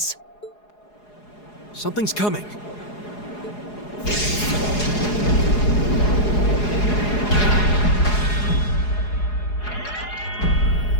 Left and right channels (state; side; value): late; right; 4.8 ms